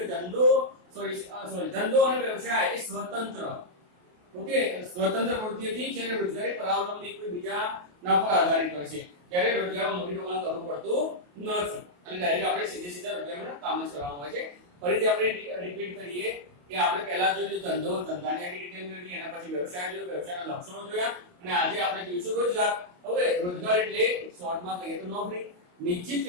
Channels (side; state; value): left; late; 28 ms